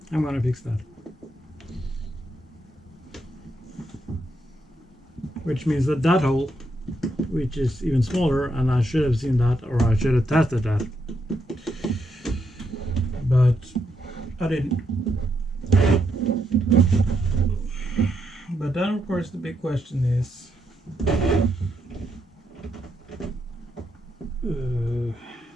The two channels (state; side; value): normal; both; correlation 0.79